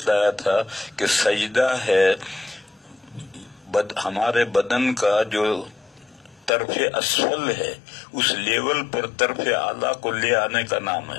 تھا کہ سجدہ ہے ہمارے بدن کا جو طرف اسفل ہے، اس لیول پر طرف اعلیٰ کو لے آنے کا نام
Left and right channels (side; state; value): right; drops out; at 6.5 s